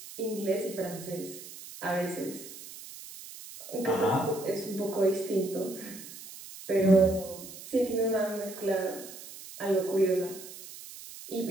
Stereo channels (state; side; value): noise; right; hiss, 14 dB below the sound